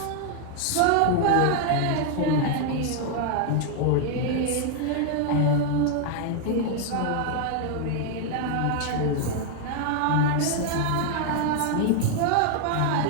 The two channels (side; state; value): both; different; correlation 0.00